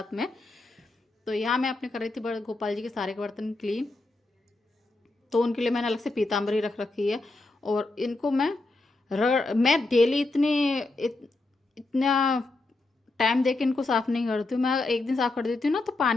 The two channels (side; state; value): right; quieter; 3.1 dB